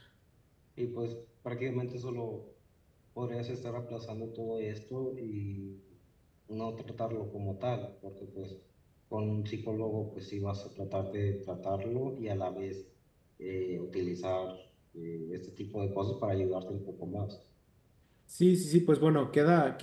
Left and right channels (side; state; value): both; identical; correlation 1.00